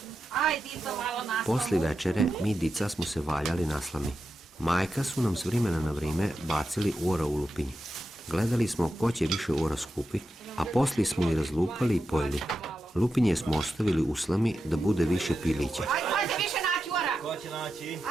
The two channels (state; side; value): normal; both; correlation 0.89